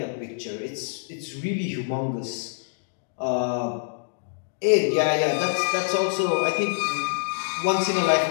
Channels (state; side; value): silent; right; digital silence